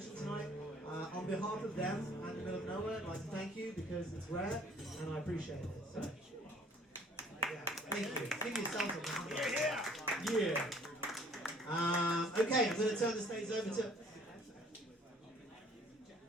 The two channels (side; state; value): both; normal; correlation 0.56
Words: tonight, on behalf of them and the middle of nowhere, I'd like to thank you because it's rare and I appreciate it. So, yeah, thank you. Give yourselves a round. Yeah. Okay, I'm going to turn the stage over to